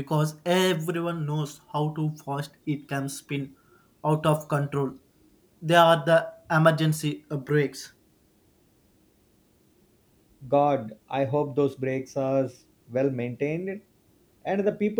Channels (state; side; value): identical; both; correlation 1.00